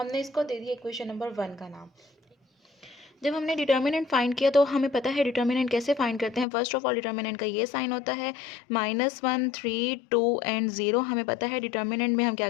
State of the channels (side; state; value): right; drops out; at 6.5 s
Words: इसको दे दिया इक्वेशन नंबर 1 का नाम। जब हमने डिटर्मिनेंट फाइंड किया तो हमें पता है डिटर्मिनेंट कैसे फाइंड करते हैं। फर्स्ट ऑफ ऑल डिटर्मिनेंट का ये साइन होता है -1, 3, 2 एंड 0। हमें पता है डिटर्मिनेंट में हम क्या